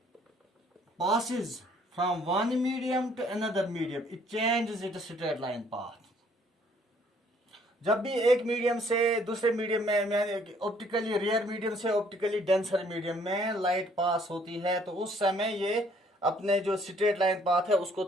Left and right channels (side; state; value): both; normal; correlation 0.62